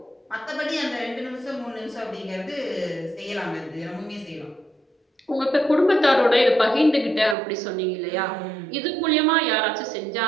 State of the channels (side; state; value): left; drops out; at 7.4 s